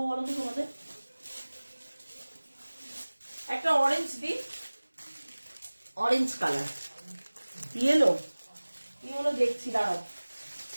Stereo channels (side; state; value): both; inverted; correlation -1.00